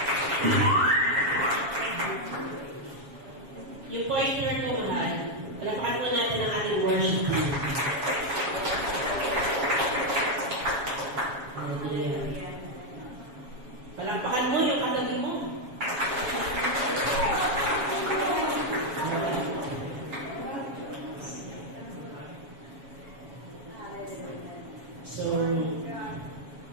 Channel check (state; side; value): late; left; 7.2 ms